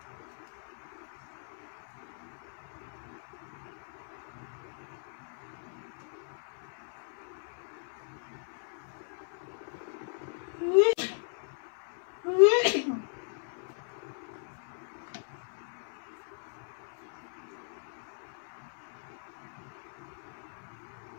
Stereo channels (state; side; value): silent; right; 53 dB below the other